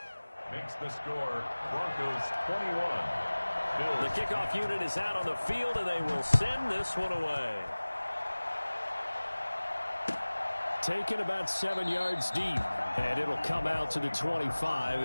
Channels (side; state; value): both; inverted; correlation -1.00